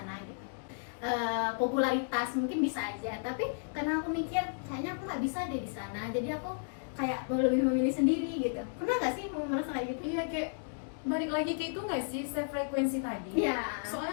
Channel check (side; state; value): right; silent; digital silence